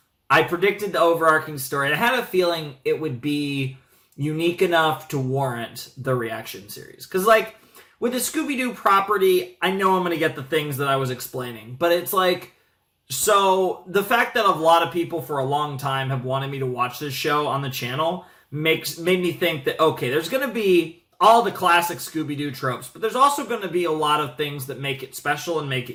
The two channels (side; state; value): both; identical; correlation 1.00